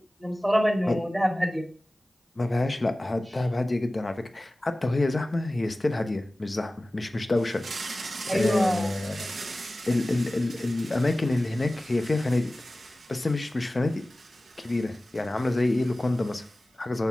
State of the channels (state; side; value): normal; both; correlation 0.97